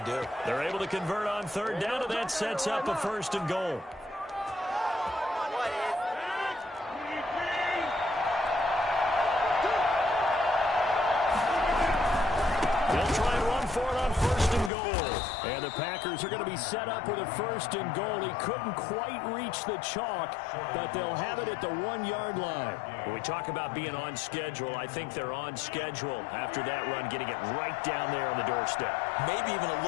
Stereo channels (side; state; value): right; drops out; at 14.7 s